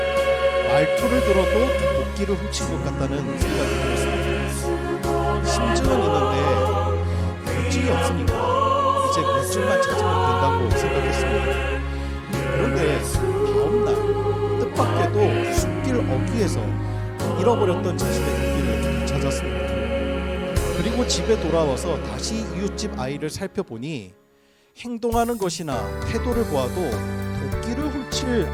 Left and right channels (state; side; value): identical; both; correlation 1.00